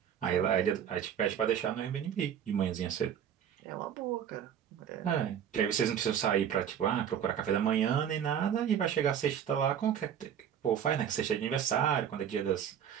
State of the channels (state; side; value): quieter; left; 9.0 dB